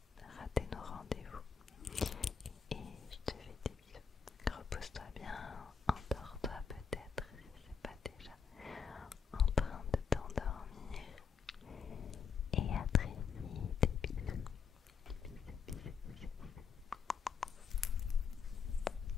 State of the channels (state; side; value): quieter; right; 6.3 dB